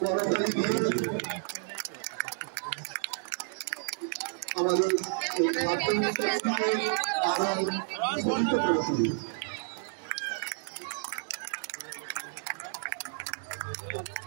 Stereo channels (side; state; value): left; silent; digital silence